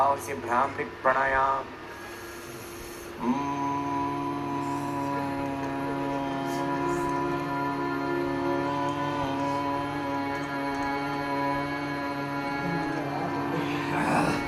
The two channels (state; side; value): identical; both; correlation 1.00